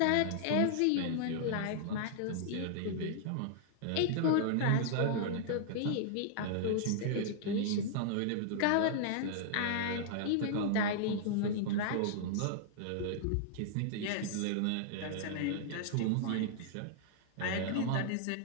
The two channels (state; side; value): different; both; correlation -0.01